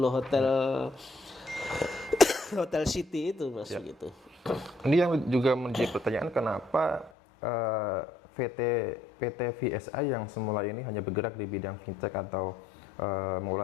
Hotel City itu, Mas, gitu. Ini yang juga menjadi pertanyaan, kenapa PT VSI yang semula ini hanya bergerak di bidang fintech atau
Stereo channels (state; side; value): drops out; right; at 7.1 s